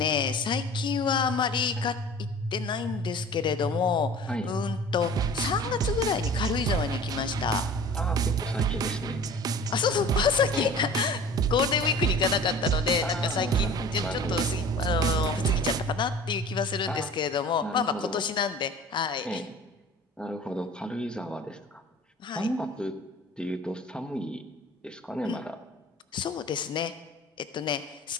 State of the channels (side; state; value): both; normal; correlation 0.43